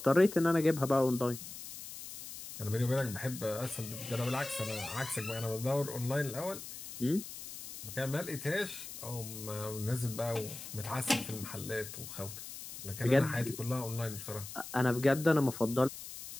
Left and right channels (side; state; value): left; noise; hiss, 11 dB below the sound